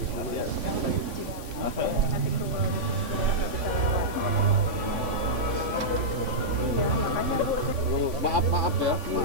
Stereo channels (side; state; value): left; late; 3.5 ms